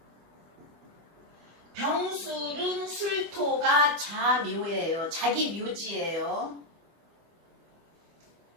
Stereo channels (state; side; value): late; left; 25 ms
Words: 병술은 술토가 자묘예요. 자기 묘지예요.